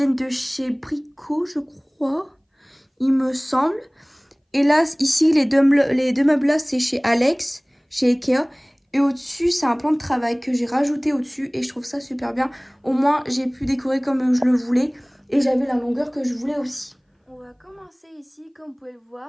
de chez Brico, je crois. Il me semble. Et là, ici, les deux meubles-là, c'est chez Alex, chez Ikea. Et au-dessus, c'est un plan de travail que j'ai rajouté au-dessus. Et je trouve ça super bien. Au moins, j'ai pu décorer comme je le voulais. Et j'avais la longueur que je voulais aussi. On va commencer ici, comme vous pouvez le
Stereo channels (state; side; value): identical; both; correlation 1.00